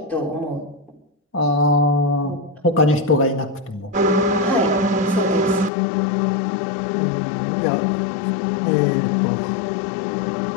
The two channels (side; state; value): right; drops out; at 5.7 s